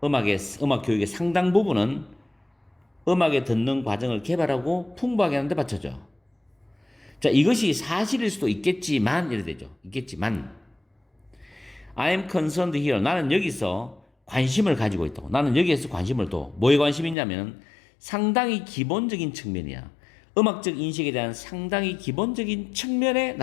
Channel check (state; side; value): drops out; right; at 17.2 s